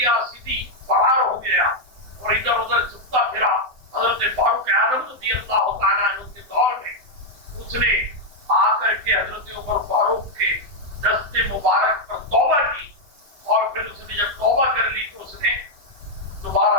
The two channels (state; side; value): late; left; 7.8 ms